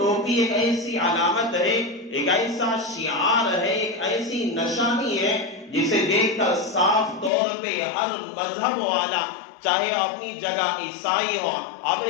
ایک ایسی علامت ہے، ایک ایسا شعار ہے، ایک ایسی نشانی ہے جسے دیکھ کر صاف طور پہ ہر مذہب والا، چاہے اپنی جگہ عیسائی ہو،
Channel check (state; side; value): drops out; right; at 7.3 s